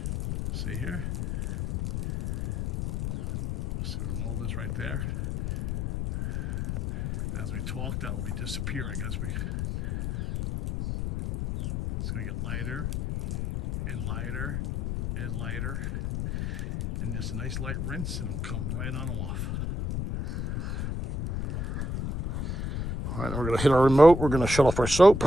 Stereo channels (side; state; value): left; noise; rumble, 3 dB below the sound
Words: See here? See the mold is right there. As we talk, that will be disappearing as we. It's going to get lighter and lighter and lighter, and just a nice light rinse, and it'll come right on off. All right, we're going to hit our remote. We're going to shut off our soap.